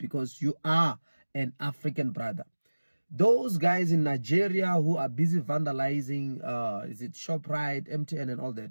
you are an African brother. Those guys in Nigeria who are busy vandalizing, is it ShopRite, MTN and all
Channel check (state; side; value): inverted; both; correlation -1.00